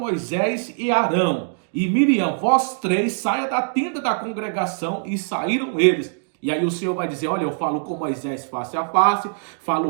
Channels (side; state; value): left; silent; digital silence